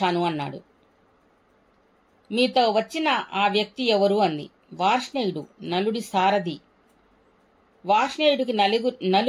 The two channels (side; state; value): both; identical; correlation 1.00